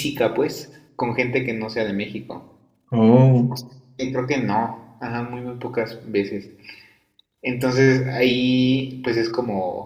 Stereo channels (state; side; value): identical; both; correlation 1.00